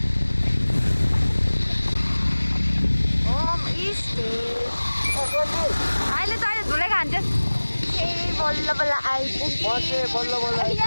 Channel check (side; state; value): both; inverted; correlation -1.00